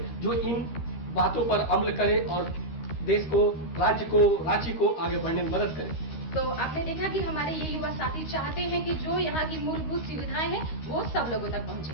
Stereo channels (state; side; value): late; right; 13 ms